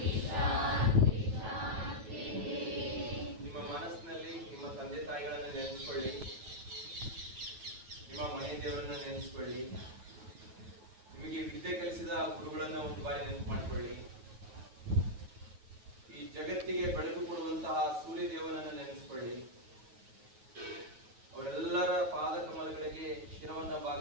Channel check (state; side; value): late; left; 9.3 ms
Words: ನಿಮ್ಮ ಮನಸ್ಸಿನಲ್ಲಿ ನಿಮ್ಮ ತಂದೆ ತಾಯಿಗಳನ್ನ ನೆನೆಸ್ಕೊಳ್ಳಿ, ನಿಮ್ಮ ಮನೆ ದೇವರನ್ನ ನೆನೆಸ್ಕೊಳ್ಳಿ, ನಿಮಗೆ ವಿದ್ಯೆ ಕಲಿಸಿದ ಗುರುಗಳನ್ನ ಒಂದು ಬಾರಿ ನೆನಪು ಮಾಡಿಕೊಳ್ಳಿ. ಈ ಜಗತ್ತಿಗೆ ಬೆಳಕು ಕೊಡುವಂತಹ ಸೂರ್ಯ ದೇವನನ್ನ ನೆನೆಸ್ಕೊಳ್ಳಿ. ಅವರೆಲ್ಲರ ಪಾದ ಕಮಲಗಳಿಗೆ ಶಿರವನ್ನ